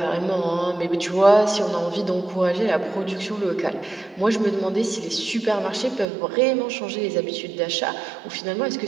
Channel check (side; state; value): left; drops out; at 6.1 s